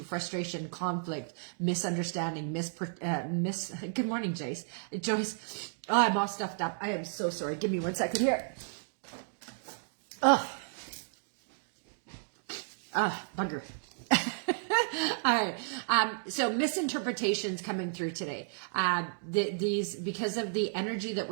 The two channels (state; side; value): silent; left; digital silence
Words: frustration, conflict, misunderstanding, good morning, Joyce. Oh, I'm all stuffed up. I am so sorry. Give me 1 second here. Bugger. All right. So misinterpretations coming through today. These, because of the energy that